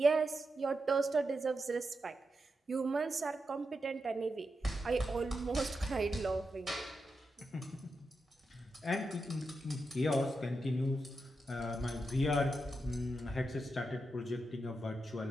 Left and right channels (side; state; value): both; normal; correlation 0.87